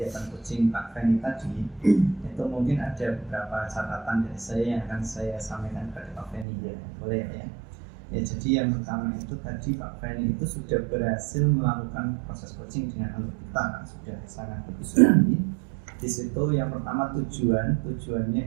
coaching Pak Feni tadi, itu mungkin ada beberapa catatan dari saya yang akan saya sampaikan kepada Pak Feni ya, boleh ya? Ya, jadi yang pertama itu tadi Pak Feni itu sudah berhasil melakukan proses coaching dengan alur kita, kan sudah sangat bagus sekali. Di situ yang pertama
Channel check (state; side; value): drops out; left; at 6.5 s